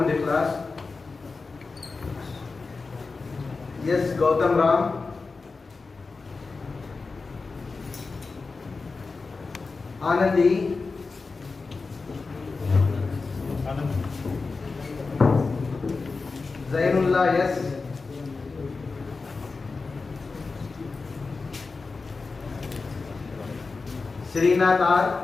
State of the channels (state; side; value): quieter; right; 4.2 dB